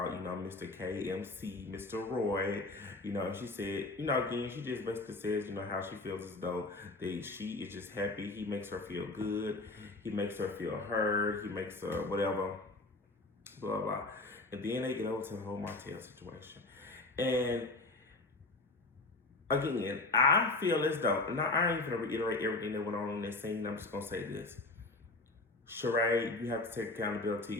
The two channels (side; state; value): right; quieter; 3.2 dB